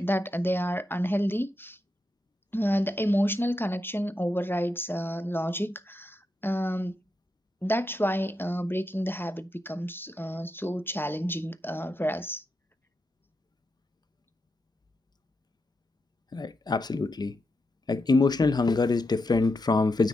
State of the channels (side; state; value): both; normal; correlation 0.85